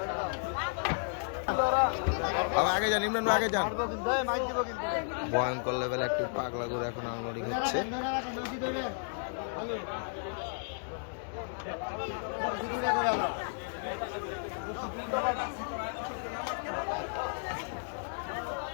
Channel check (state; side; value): silent; right; digital silence